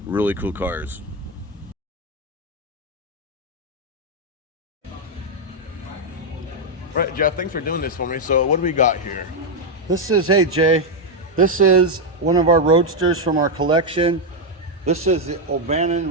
really cool cars. Right, Jeff, thanks for doing this for me. So what do we got here? Hey Jay, this is one of our roadsters from our collection. This is the O'Bannon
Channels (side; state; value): both; normal; correlation 0.02